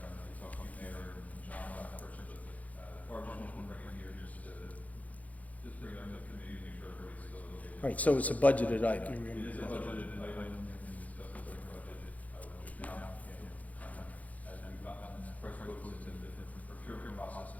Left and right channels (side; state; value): right; late; 0.073 ms